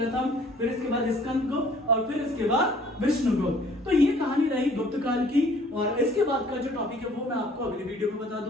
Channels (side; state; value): both; normal; correlation 0.56